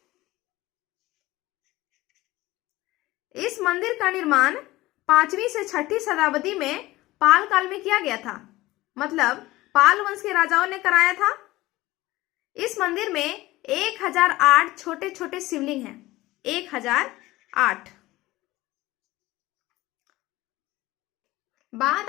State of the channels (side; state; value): right; quieter; 18.4 dB